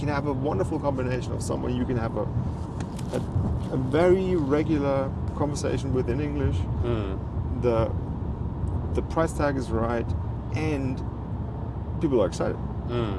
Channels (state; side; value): identical; both; correlation 1.00